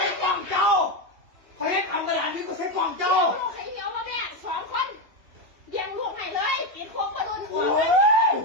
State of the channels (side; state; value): left; late; 2.8 ms